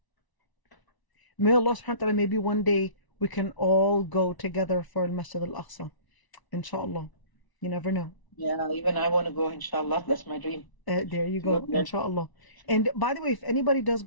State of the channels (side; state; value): right; late; 1.0 ms